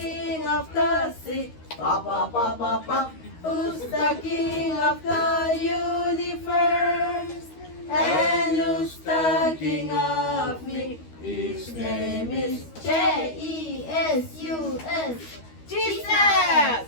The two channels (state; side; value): late; right; 13 ms